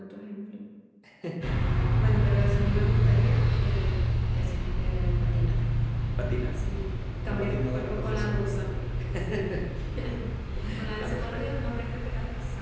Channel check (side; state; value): both; identical; correlation 1.00